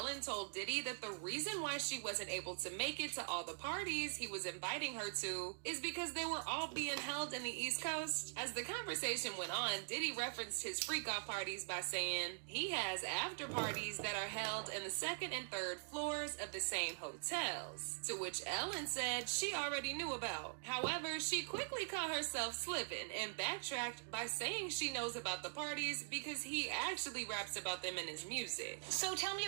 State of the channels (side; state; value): left; silent; digital silence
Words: told Diddy that the reason why she wasn't able to make it to all the parties he was inviting her to is because they were all being held in the East Coast? As the conversation went on, Diddy referenced his freak-off parties by saying he has after parties that are held in the second and third floors of the same hotels, to which Ellen said she already knew about. However, she quickly caught herself slipping and backtracked by saying she knows about the parties because he actually raps about them in his music. So tell me